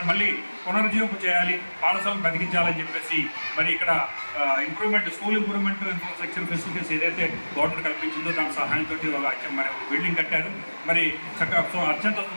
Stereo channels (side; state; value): both; inverted; correlation -1.00